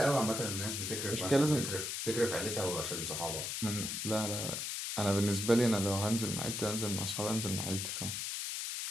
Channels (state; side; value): noise; left; hiss, 3 dB below the sound